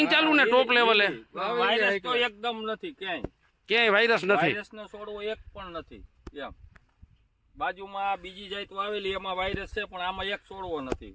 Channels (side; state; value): both; identical; correlation 1.00